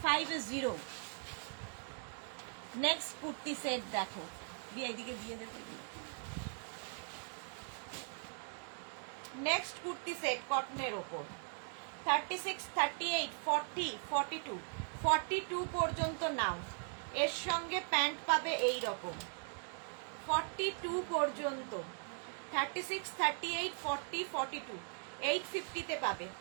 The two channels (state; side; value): silent; left; 51 dB below the other